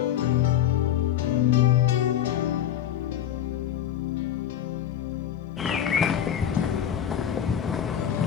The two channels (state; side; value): quieter; right; 10.2 dB